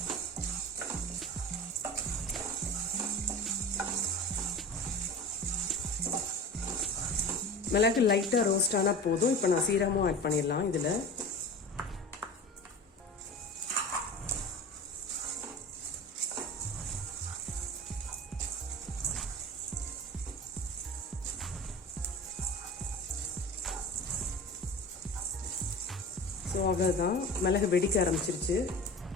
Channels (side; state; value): both; normal; correlation 0.33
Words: மிளகு லைட்டாக ரோஸ்ட் ஆனால் போதும். இப்போ நான் சீரகமும் ஆட் பண்ணிடலாம் இதில். ஸோ அவ்வளோதான், மிளகு வெடிக்க ஆரம்பிச்சிருச்சு.